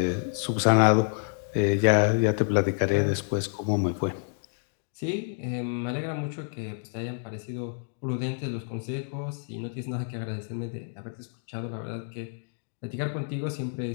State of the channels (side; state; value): right; silent; 59 dB below the other